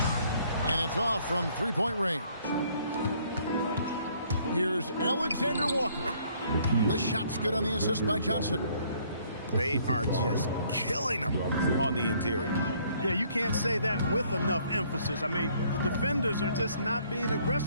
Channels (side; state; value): both; inverted; correlation -0.63